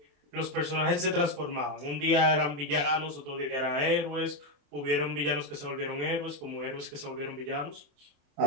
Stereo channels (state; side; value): late; left; 28 ms